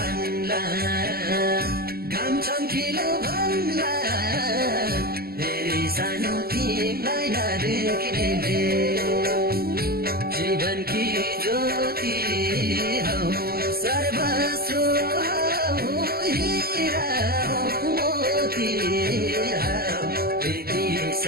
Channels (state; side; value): late; left; 0.45 ms